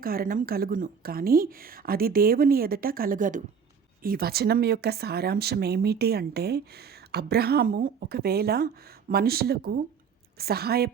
కారణం కలుగును, కానీ అది దేవుని ఎదుట కలుగదు. ఈ వచనం యొక్క సారాంశం ఏమిటి అంటే, అబ్రహాము ఒకవేళ మనుషులకు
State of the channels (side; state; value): left; quieter; 6.5 dB